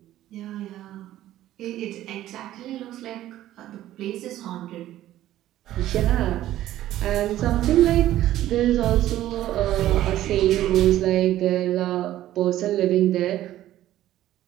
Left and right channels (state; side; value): quieter; left; 13.6 dB